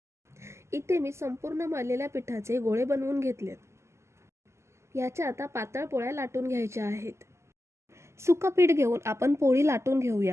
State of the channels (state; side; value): late; left; 0.13 ms